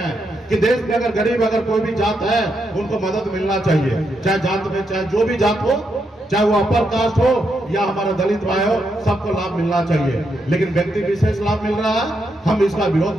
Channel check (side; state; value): both; normal; correlation 0.81